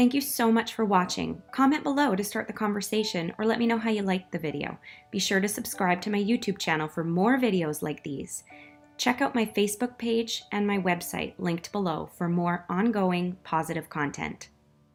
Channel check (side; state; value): both; identical; correlation 1.00